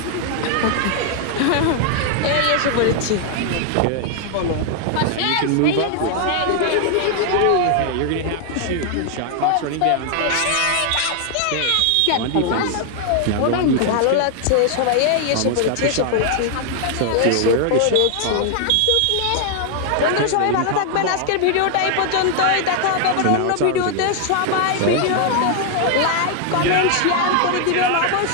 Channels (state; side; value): different; both; correlation 0.00